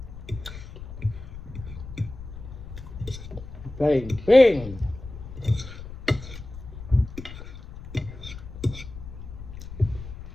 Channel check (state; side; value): noise; left; rumble, 12 dB below the sound